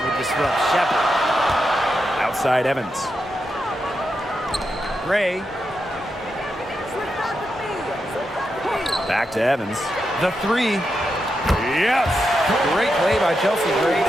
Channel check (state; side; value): normal; both; correlation 0.86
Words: would disrupt Shepherd. Outside Evans. Gray. Back to Evans. The three. Yes! Great play by Chelsea Gray